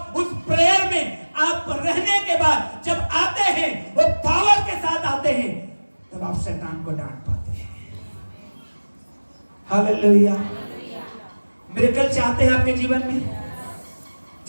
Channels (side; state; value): both; inverted; correlation -1.00